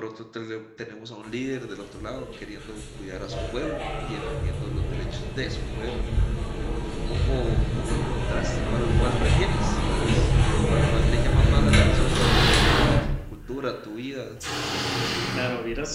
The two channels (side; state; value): both; identical; correlation 1.00